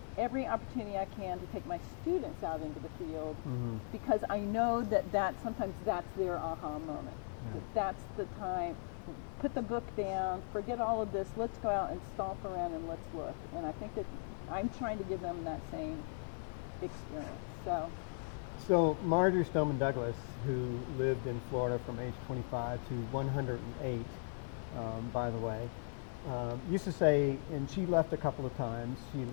every opportunity I can to take my students out into the field, because I know that sometimes that's their aha moment. Yeah. That's the time. Put the book down, forget all of this, let's go out and stomp around and let's look. And I think that I'm trying to give them that same experience. So Marjorie Stoneman Douglas, who lived in Florida from age 25 to 108, by the way, used to say, and she left a couple of times. She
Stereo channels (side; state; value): right; silent; 52 dB below the other